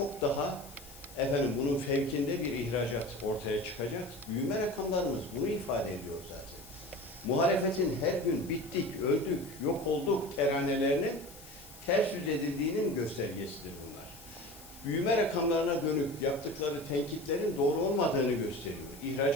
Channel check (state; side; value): noise; left; hiss, 19 dB below the sound